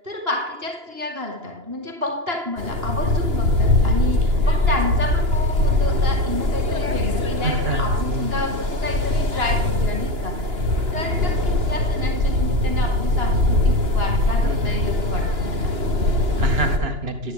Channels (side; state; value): left; late; 2.9 ms